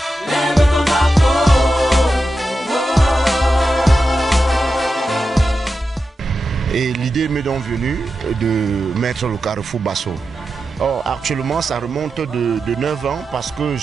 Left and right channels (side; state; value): both; normal; correlation 0.90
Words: Et l'idée m'est donc venue de mettre le carrefour Basso. Or, actuellement, ça remonte de 9 ans parce que